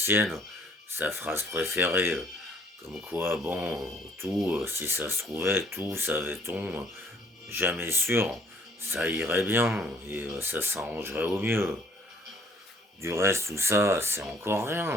sa phrase préférée, comme quoi, bon, tout, si ça se trouvait, tout, savait-on, jamais sûr, ça irait bien et ça s'arrangerait au mieux. Du reste, tout ça, c'est encore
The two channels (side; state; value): both; normal; correlation 0.60